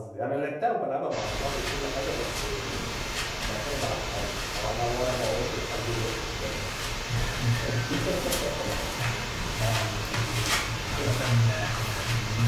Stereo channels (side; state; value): both; identical; correlation 1.00